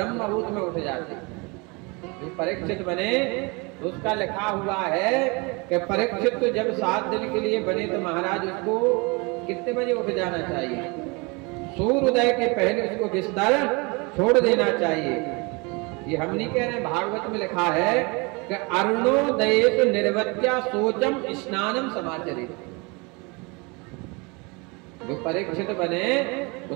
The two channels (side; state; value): left; quieter; 28.5 dB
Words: मुहूर्त में उठ जाते। जो परीक्षित बने उसका लिखा हुआ है कि परीक्षित तो जब 7 दिन के लिए बने तो महाराज उसको कितने बजे उठ जाना चाहिए? सूर्योदय के पहले उसको बिस्तर छोड़ देना चाहिए। ये हम नहीं कह रहे, भागवत में लिखा है कि अरुणोदयेत निर्वत्या शोचम स्नानम समाचरेत्। जो परीक्षित बने